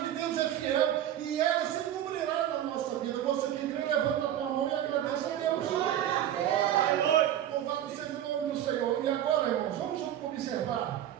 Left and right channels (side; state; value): left; quieter; 11.4 dB